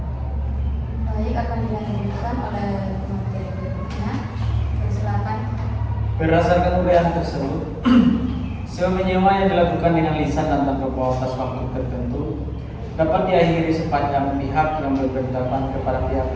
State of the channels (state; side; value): identical; both; correlation 1.00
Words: Baik, akan dilanjutkan oleh materi berikutnya. Silakan. Berdasarkan uraian tersebut, sewa menyewa yang dilakukan dengan lisan dan tanpa batas waktu tertentu dapat diakhiri sepanjang pihak yang memberitahukan kepada pihak